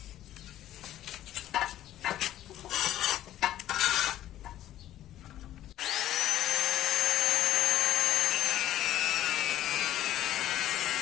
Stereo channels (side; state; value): right; quieter; 13.0 dB